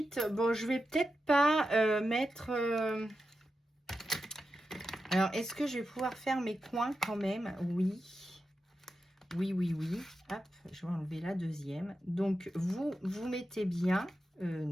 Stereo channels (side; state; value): both; normal; correlation 0.90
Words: bon, je vais peut-être pas mettre... Alors, est-ce que je vais pouvoir faire mes coins quand même? Oui. Oui, oui, oui. Hop, je vais enlever la deuxième. Donc, vous mettez bien...